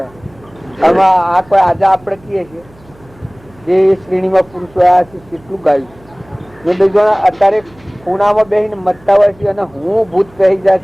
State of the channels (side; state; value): right; noise; hum, 27 dB below the sound